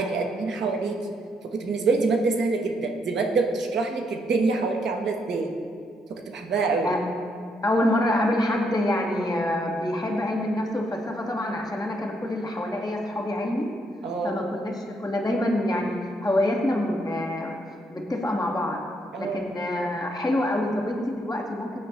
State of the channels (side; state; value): both; normal; correlation 0.75